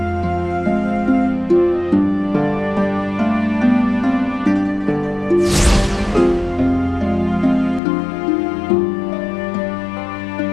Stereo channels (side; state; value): right; drops out; at 7.8 s